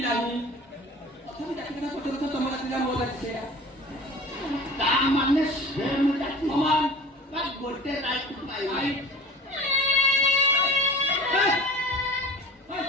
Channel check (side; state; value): both; normal; correlation 0.40